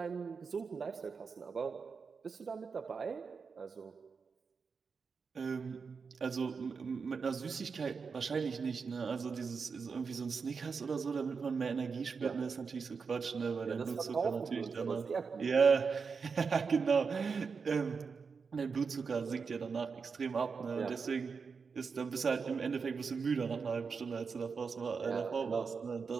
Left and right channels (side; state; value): left; quieter; 5.3 dB